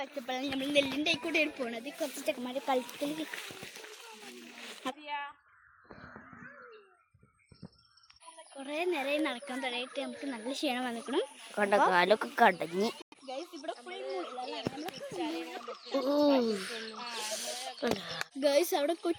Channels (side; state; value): both; identical; correlation 1.00